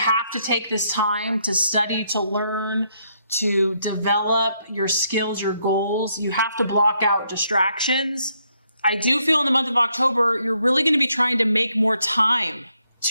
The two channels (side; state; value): both; inverted; correlation -0.75